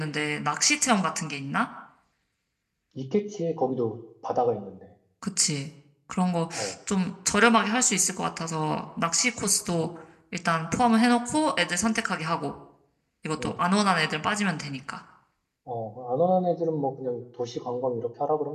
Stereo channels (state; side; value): identical; both; correlation 1.00